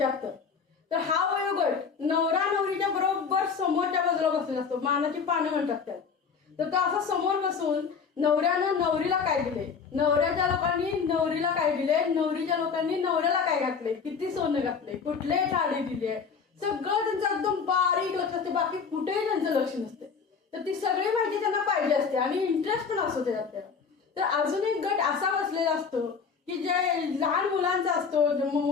तर हा वयोगट नवरा नवरीच्या बरोबर समोरच्या बाजूला बसलेला असतो, मानाची पानं म्हणतात त्याला. तर तो असा समोर बसून नवऱ्यानं नवरीला काय दिले, नवऱ्याच्या लोकांनी नवरीला काय दिले, नवरीच्या लोकांनी नवऱ्याला काय घातले, किती सोनं घातले, कुठले साडी दिली आहे, सगळं त्यांचं एकदम बारीक लक्ष असते. बाकी कुठेही त्यांचं लक्ष नसते. तर ती सगळी माहिती त्यांना पाहिजे असते आणि इंटरेस्ट पण असतो त्याच्यात त्याला. तर अजून एक गट असा बसलेला असतो की जे लहान मुलांचा असतो,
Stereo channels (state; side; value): quieter; right; 5.8 dB